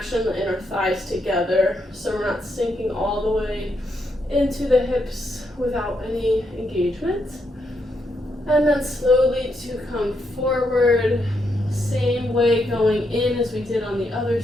the inner thighs together so we're not sinking all the way into the hips without any engagement. And then slowly to come forward, same way going in as we did on the other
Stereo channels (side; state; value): both; normal; correlation 0.79